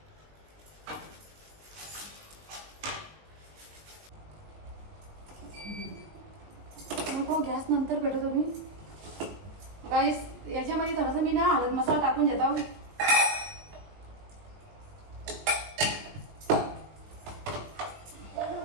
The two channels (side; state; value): left; late; 19 ms